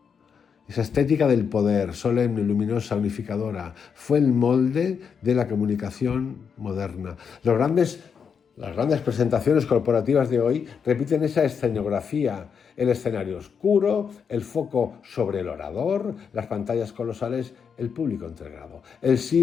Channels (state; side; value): quieter; right; 6.6 dB